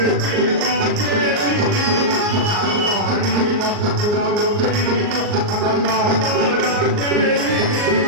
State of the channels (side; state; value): left; late; 38 ms